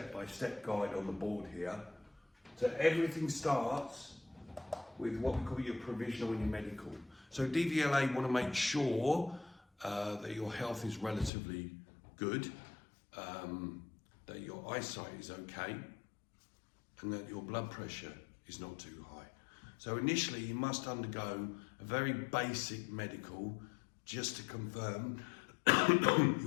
guide on the board here. So everything starts with what we call your provisional and your medical. So DVLA want to make sure that your health is relatively good, that your eyesight is okay, and that your blood pressure is not too high. So initially you must undergo a very basic medical just to confirm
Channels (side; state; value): right; drops out; at 11.3 s